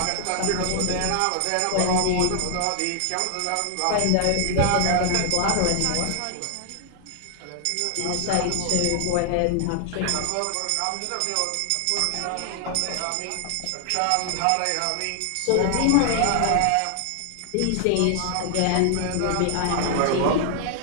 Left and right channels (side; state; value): both; different; correlation 0.00